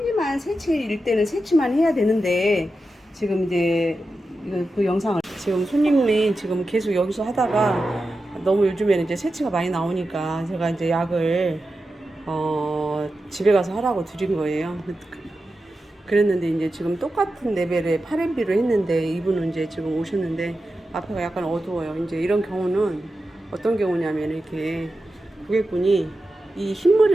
새치일 때는 새치만 해야 되는데 지금 이제 그 영상을 지금 손님이 지금 계속 여기서 하다가 너무 요즘에는 이제 새치가 많이 나오니까 제가 이제 약을 집에 가서 하라고 드린 거예요. 그랬는데 이제 지금 똑같은 레벨의 파렌비로 했는데 이분은 이제 지금 오셨는데 앞에가 약간 어두워요. 이제 이런 경우는 어떤 경우냐면 이렇게 고객분이 이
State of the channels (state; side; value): normal; both; correlation 0.91